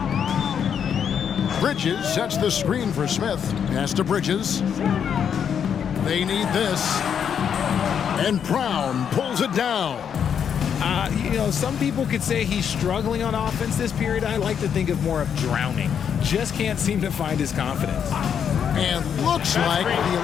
Bridges sets the screen for Smith. Pass to Bridges. They need this. And Brown pulls it down. Some people could say he's struggling on offense this period. I like to think of more of drowning. Just can't seem to find his confidence. And looks like the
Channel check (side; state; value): right; quieter; 7.9 dB